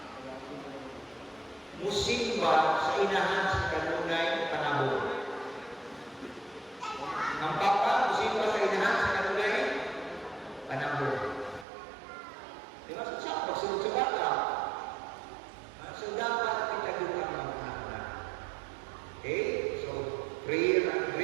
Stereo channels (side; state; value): left; drops out; at 11.7 s